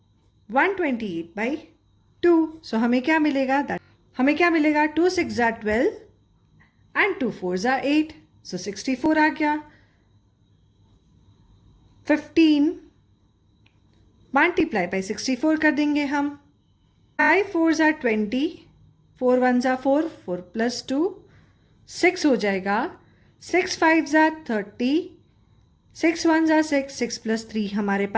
128 by 2. सो हमें क्या मिलेगा? हमें 2 6 are 12 एंड 2 4s are 8. सो 64 आ गया. 15 मल्टीप्लाई बाई 64 कर देंगे हम. 5 4s are 20. 4 1s are 4. 4 plus 2 6 हो जाएगा. 6 5s are 30. 6 1s are 6. 6 plus 3 हमारे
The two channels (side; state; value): both; identical; correlation 1.00